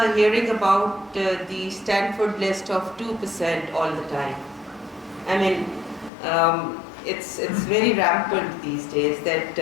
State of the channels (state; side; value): drops out; right; at 6.1 s